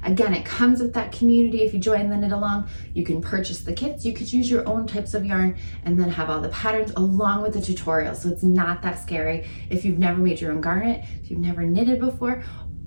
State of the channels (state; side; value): inverted; both; correlation -1.00